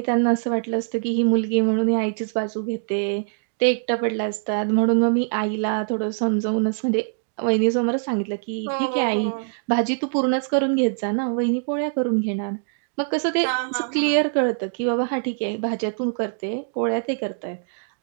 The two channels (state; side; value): silent; left; digital silence